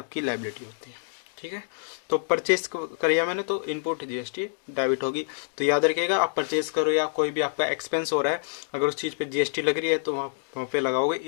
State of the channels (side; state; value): right; silent; digital silence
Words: लायबिलिटी होती है, ठीक है। तो परचेज करिए मैंने तो इनपुट GST डेबिट होगी। तो याद रखिएगा आप परचेज करो या कोई भी आपका एक्सपेंस हो रहा है, अगर उस चीज़ पे GST लग रही है तो वहाँ पे लगाओगे